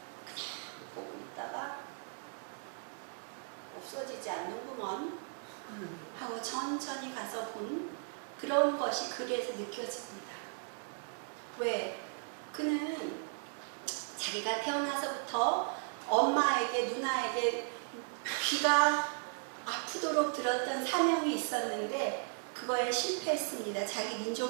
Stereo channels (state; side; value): silent; left; 54 dB below the other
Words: 그냥 보고 있다가 없어지지 않는구먼 하고 천천히 가서 본 그런 것이 그래서 느껴집니다. 왜? 그는 자기가 태어나서부터 엄마에게, 누나에게 귀가 아프도록 들었던 사명이 있었는데 그거에 실패했습니다. 자기